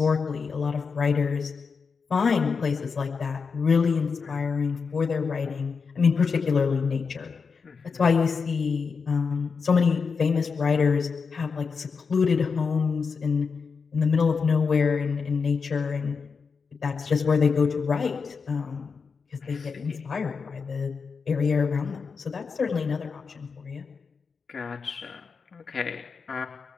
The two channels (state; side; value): quieter; right; 5.3 dB